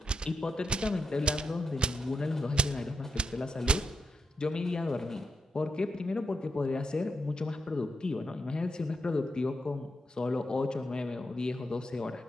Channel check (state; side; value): normal; both; correlation 0.85